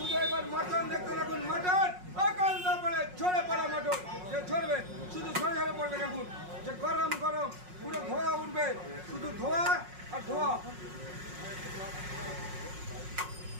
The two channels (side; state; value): left; late; 5.5 ms